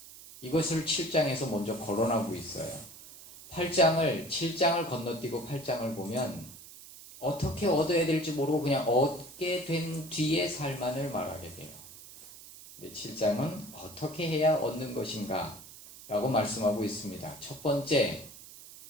이것을 7장에서 먼저 거론하고 있어요. 7장을 건너뛰고 8장을 보면 어떻게 얻어야 될지 모르고 그냥 얻게 된 뒤의 삶만을 말하게 돼요. 근데 7장은 어떻게 해야 얻는 것인가 라고 말씀하고 있습니다. 첫 번째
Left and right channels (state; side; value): noise; right; hiss, 17 dB below the sound